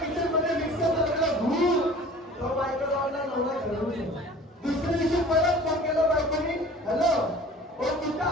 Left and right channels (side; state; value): both; normal; correlation 0.45